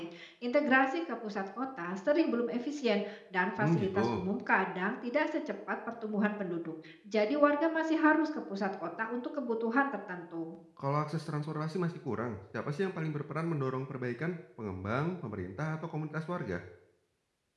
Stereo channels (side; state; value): both; identical; correlation 1.00